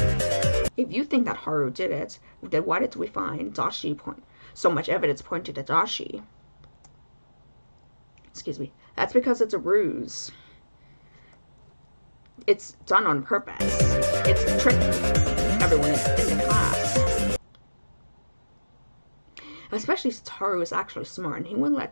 If you think that Haru did it, then why did we find so much evidence pointed at Dashi? Excuse me. That's because it's a ruse. It's done on purpose. It's to trick everyone in the class. Especially since Haru is actually smart, and he wouldn't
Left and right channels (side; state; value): both; inverted; correlation -1.00